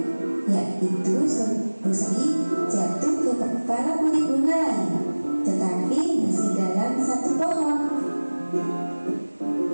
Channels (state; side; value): inverted; both; correlation -1.00